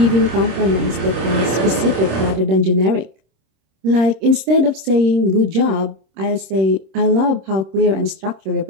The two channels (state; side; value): late; left; 26 ms